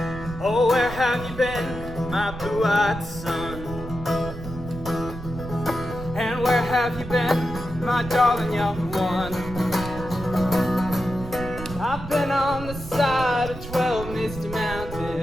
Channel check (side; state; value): right; noise; rumble, 10 dB below the sound